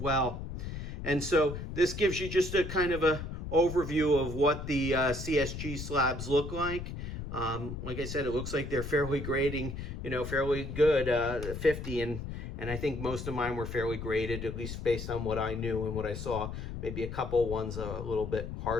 And so this gives you just a kind of a overview of what the CSG slabs look like. Like I said, it looks like they're fairly grading, fairly good, 50, and I think most of mine were fairly graded, at least based on what I knew and what I saw. Maybe a couple ones a little bit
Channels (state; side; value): noise; left; rumble, 7 dB below the sound